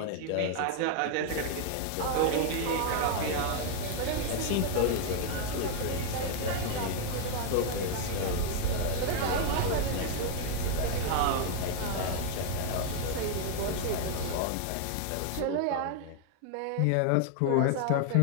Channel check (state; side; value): different; both; correlation 0.00